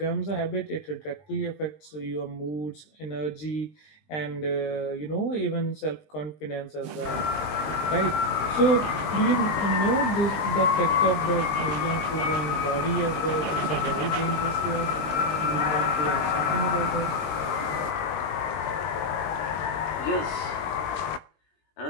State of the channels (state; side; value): late; right; 20 ms